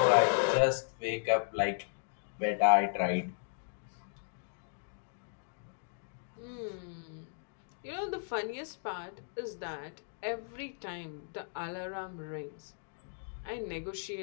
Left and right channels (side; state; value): right; silent; digital silence